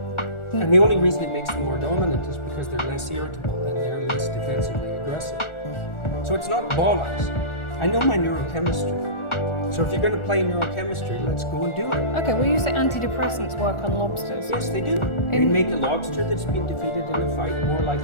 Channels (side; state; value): right; late; 1.4 ms